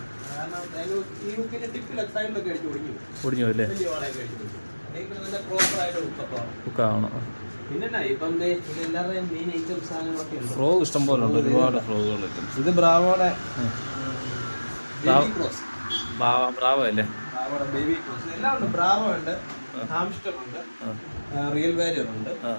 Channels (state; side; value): inverted; both; correlation -1.00